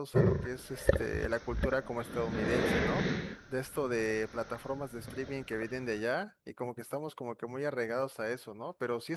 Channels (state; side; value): identical; both; correlation 1.00